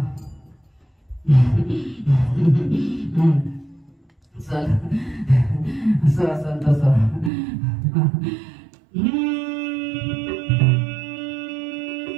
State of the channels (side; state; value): left; drops out; at 7.3 s